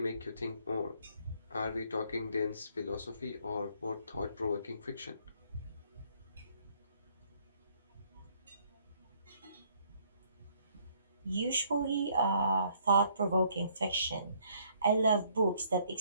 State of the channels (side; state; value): both; inverted; correlation -0.65